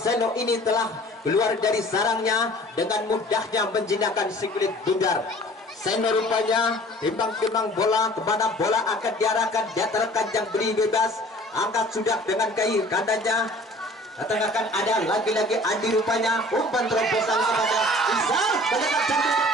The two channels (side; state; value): both; normal; correlation 0.48